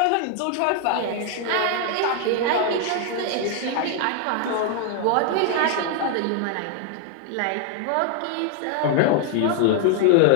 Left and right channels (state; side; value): different; both; correlation 0.00